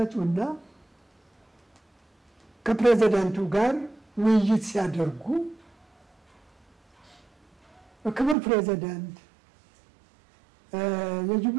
ከፕሬዝዳንቱ ጋር ውይይት ሲያደርጉ ክቡር ፕሬዝዳንት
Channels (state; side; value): drops out; left; at 8.3 s